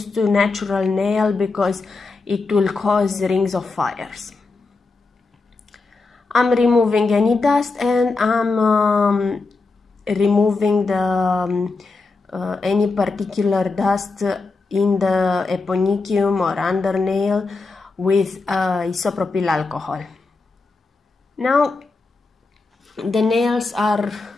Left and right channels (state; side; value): quieter; right; 3.8 dB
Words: to natural nail because it will cause rings of fires. I'm removing any dust, and I'm removing the any particular dust in the eponychium or under nail with isopropyl alcohol. Now the nails are